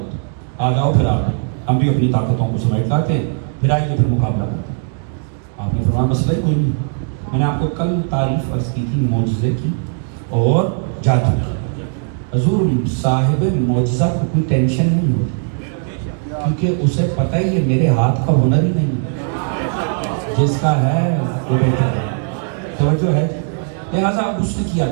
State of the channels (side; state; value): left; silent; 56 dB below the other